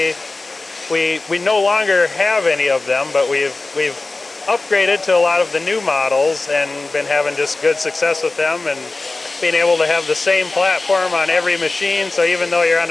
no longer have any of them, but we've upgraded to a lot of the new models and been having just good success with them, and being able to have the same platform on every machine. So even though you're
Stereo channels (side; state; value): right; quieter; 3.3 dB